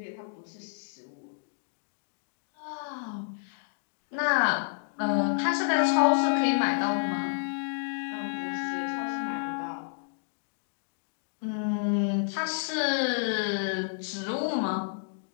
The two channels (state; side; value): silent; right; digital silence